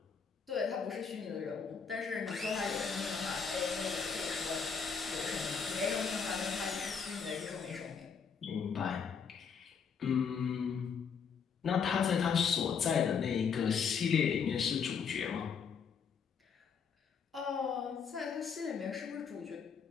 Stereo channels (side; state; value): right; quieter; 6.3 dB